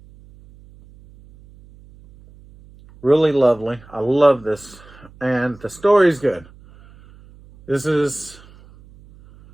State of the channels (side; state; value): right; noise; hum, 24 dB below the sound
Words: Really lovely. I love this. And the story's good. This is...